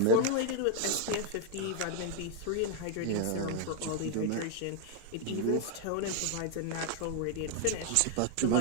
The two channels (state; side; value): different; both; correlation 0.00